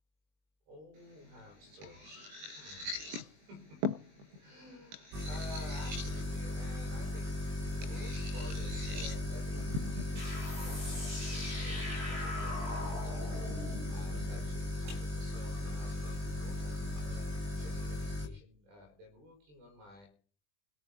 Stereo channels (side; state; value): left; late; 20 ms